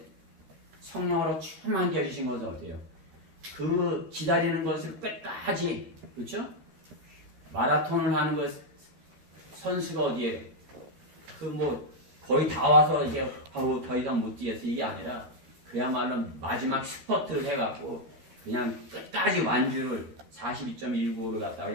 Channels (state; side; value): late; left; 13 ms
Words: 성령으로 충만케 해주신 것은 어떻게 해요? 그 기다리는 것을 끝까지, 그렇죠? 마라톤을 하는 것 선수가 어디에요? 거의 다 와서 이제 더 이상 못 뛰겠어. 이게 아니라 그야말로 마지막 스퍼트를 해갖고 그냥 끝까지 완주를 42.195를 갖다가